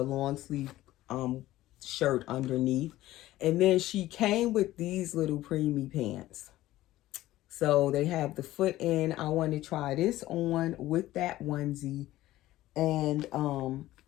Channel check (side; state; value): right; quieter; 15.7 dB